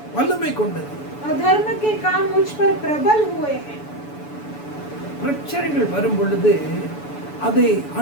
வல்லமை கொண்டது. अधर्म के काम मुझ पर प्रबल हुए हैं. பிரச்சனைகள் வரும் பொழுது அதை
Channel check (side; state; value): right; late; 7.0 ms